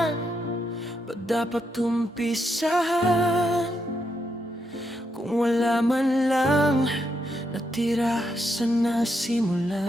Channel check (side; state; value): both; normal; correlation 0.80